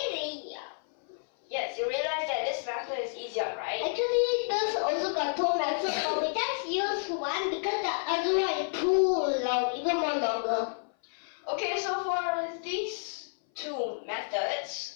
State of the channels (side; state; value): right; silent; 56 dB below the other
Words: Yes, you realize that this method is easier, right? Actually, there's also got two methods, but we just use one because the other one is too long, even more longer. Okay, so for these two